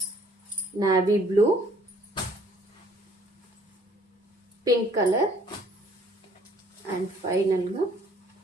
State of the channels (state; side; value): normal; both; correlation 0.59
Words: Navy blue, pink colour and ఫైనల్గా